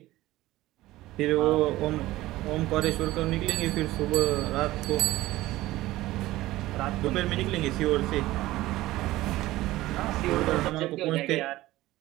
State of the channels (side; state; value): left; quieter; 17.0 dB